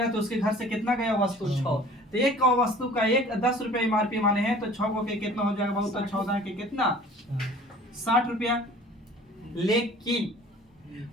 तो उसके घर से कितना गया वस्तु? 6। तो एक वस्तु का 10 रुपया एमआरपी माने हैं तो 6 को के कितना हो जाएगा बाबू? तो 14 के कितना? 60 रुपया। लेकिन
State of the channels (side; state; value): both; normal; correlation 0.48